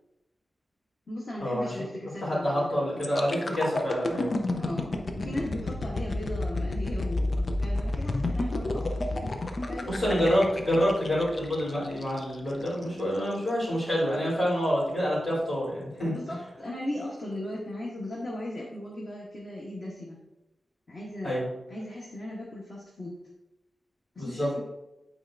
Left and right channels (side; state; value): both; normal; correlation 0.92